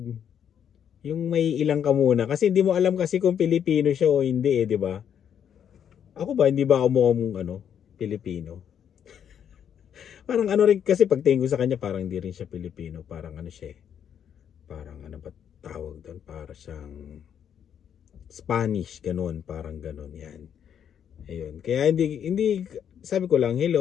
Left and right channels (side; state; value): right; quieter; 8.7 dB